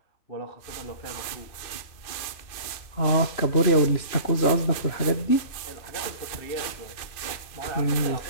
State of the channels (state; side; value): late; right; 2.6 ms